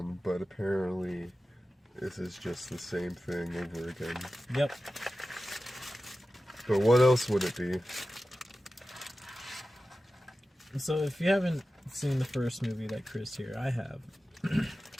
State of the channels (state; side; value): normal; both; correlation 0.94